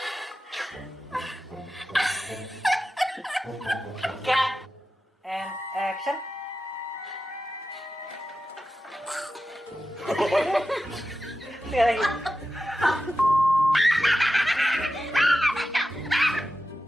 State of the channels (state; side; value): normal; both; correlation 0.92